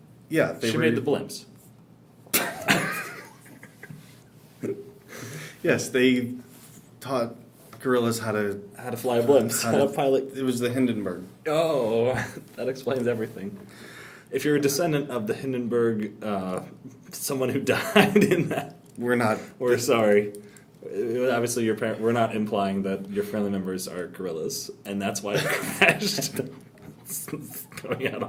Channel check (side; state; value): both; identical; correlation 1.00